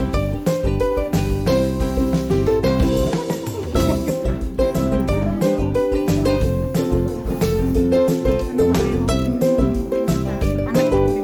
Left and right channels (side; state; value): both; identical; correlation 1.00